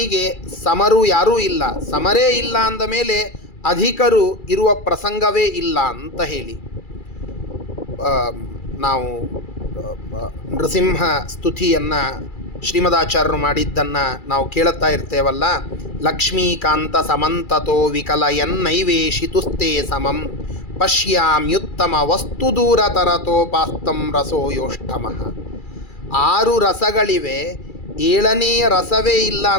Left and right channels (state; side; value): late; right; 2.4 ms